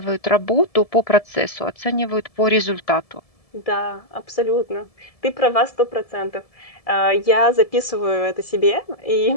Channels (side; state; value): right; late; 1.7 ms